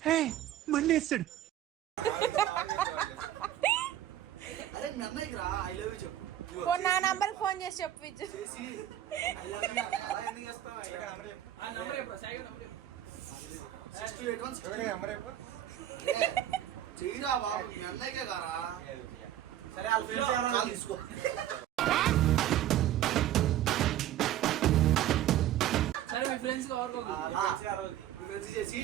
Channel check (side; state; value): left; quieter; 12.2 dB